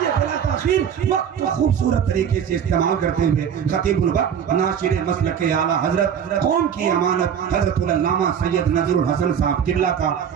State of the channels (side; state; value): left; quieter; 8.2 dB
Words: बला ताखीर वक्त को खूबसूरत तरीके से इस्तेमाल करते हुए खतीबुल वक्त नाशिर मसलक आला हजरत कौम की अमानत हजरत अल्लामा सैयद नजरुल हसन साहब किल्ला का